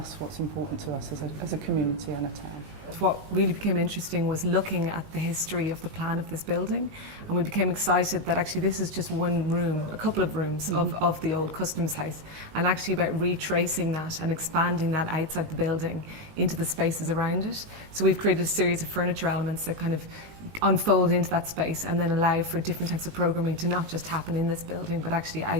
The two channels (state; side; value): late; left; 19 ms